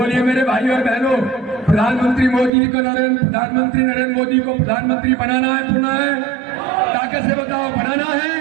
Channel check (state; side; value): drops out; left; at 2.5 s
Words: मेरे भाइयों और बहनों, प्रधानमंत्री मोदी को, प्रधानमंत्री नरेंद्र मोदी को प्रधानमंत्री बनाना है, पुनः है, ताकत से बताओ बनाना है।